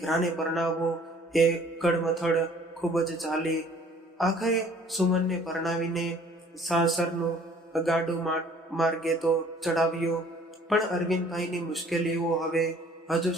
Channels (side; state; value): both; normal; correlation 0.55